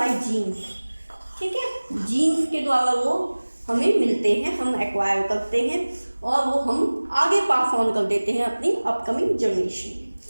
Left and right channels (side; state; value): both; inverted; correlation -1.00